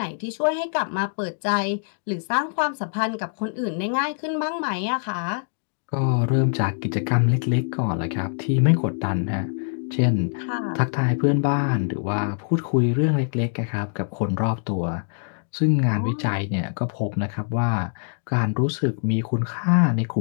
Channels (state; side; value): silent; right; digital silence